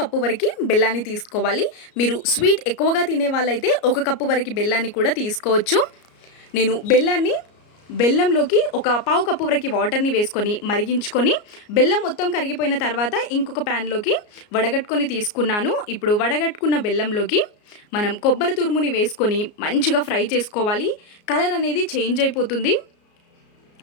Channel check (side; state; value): right; late; 34 ms